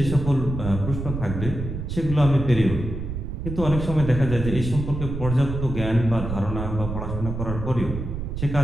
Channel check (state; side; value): noise; right; rumble, 5 dB below the sound